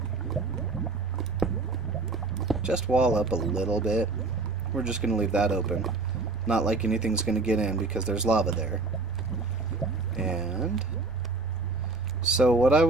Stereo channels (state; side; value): quieter; left; 3.6 dB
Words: just wall up a little bit. We're just going to leave that open. Not like anything's going to get in because there's lava there. And so what I